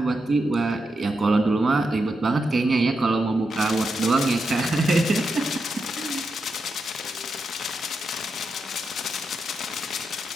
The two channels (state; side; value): normal; both; correlation 0.86